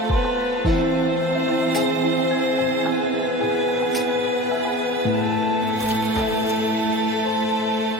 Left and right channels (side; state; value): both; normal; correlation 0.38